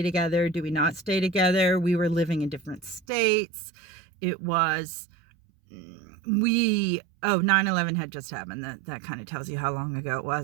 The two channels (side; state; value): left; drops out; at 3.0 s